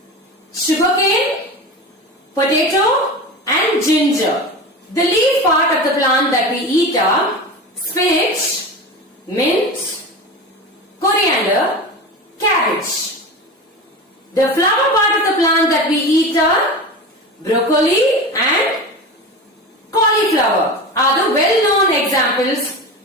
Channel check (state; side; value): normal; both; correlation 0.28